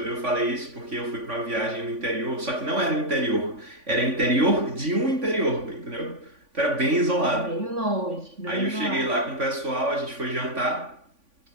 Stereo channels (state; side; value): late; left; 3.5 ms